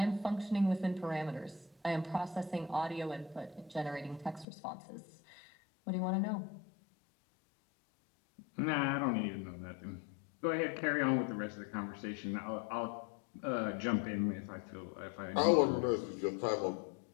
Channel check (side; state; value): right; drops out; at 4.5 s